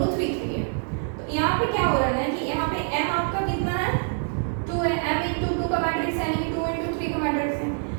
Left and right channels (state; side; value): silent; left; 57 dB below the other